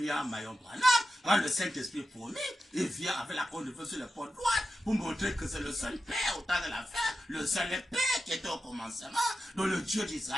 Mayon Branham. Quand le Saint-Esprit promis, il vient avec la cône de feu sur le pont droit pour montrer que c'est le seul Père au temps de la fin, le seul Père qui était au commencement. Donc le Dieu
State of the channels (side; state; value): both; normal; correlation 0.91